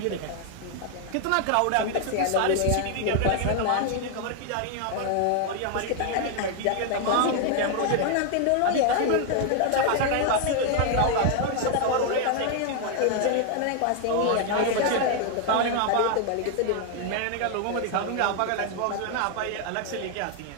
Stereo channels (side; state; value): both; different; correlation 0.00